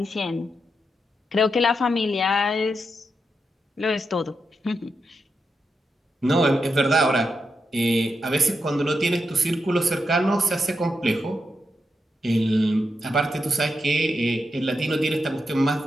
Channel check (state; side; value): normal; both; correlation 0.85